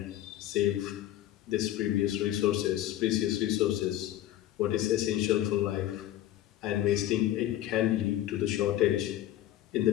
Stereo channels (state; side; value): quieter; right; 13.4 dB